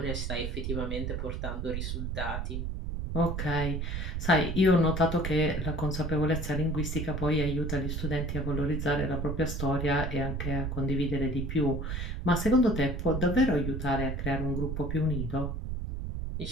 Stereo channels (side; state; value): right; noise; rumble, 3 dB below the sound